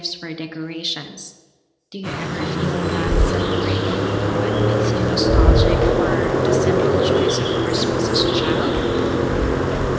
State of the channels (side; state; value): both; identical; correlation 1.00